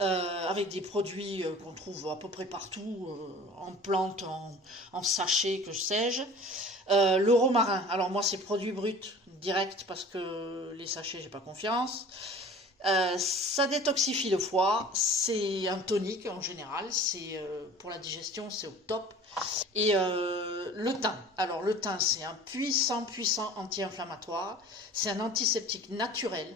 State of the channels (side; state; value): both; normal; correlation 0.43